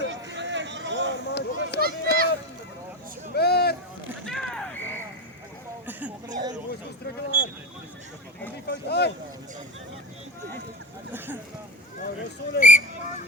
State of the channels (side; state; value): both; normal; correlation 0.23